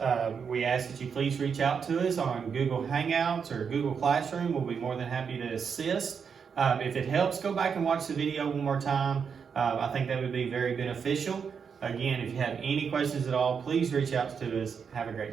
we ask that you please reach out to us on Google Hangouts or Google Classroom. We'll be more than happy to assist. If it helps, go back and watch the video one more time. I think that would be very beneficial. Again, if you have any questions at all, please reach out to us. Have a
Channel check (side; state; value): left; quieter; 6.5 dB